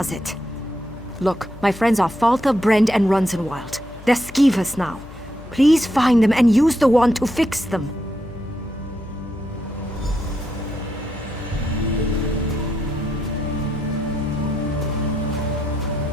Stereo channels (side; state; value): left; noise; hum, 17 dB below the sound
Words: it. Look, my friends are Falta, Brend, and Runzenwild. They're skeevers now. Please find them and use the wand to fix them.